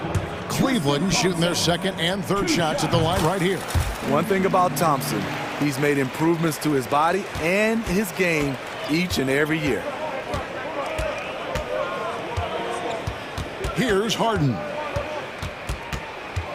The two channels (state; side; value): identical; both; correlation 1.00